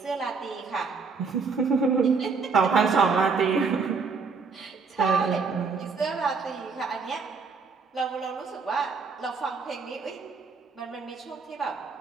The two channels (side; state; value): left; quieter; 4.9 dB